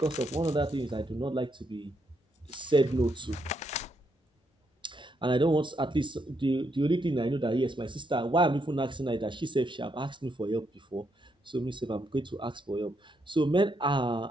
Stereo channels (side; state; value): both; normal; correlation 0.78